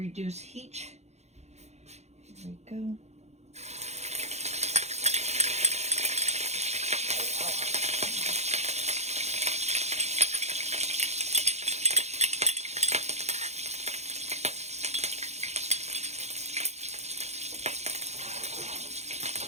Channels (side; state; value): left; late; 0.32 ms